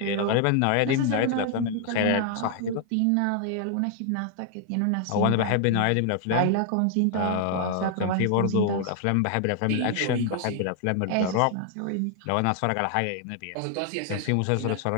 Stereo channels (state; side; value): different; both; correlation 0.00